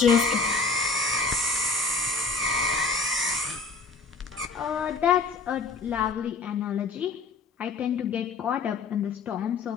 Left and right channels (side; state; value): right; quieter; 4.2 dB